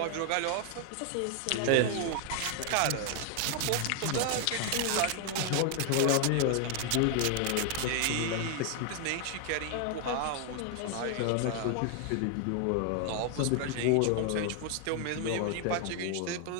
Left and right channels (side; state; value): both; different; correlation 0.00